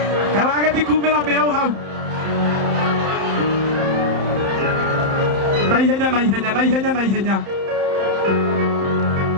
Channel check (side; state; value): left; late; 31 ms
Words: Kawagĩthi kumĩra mĩau hau. Naihenya.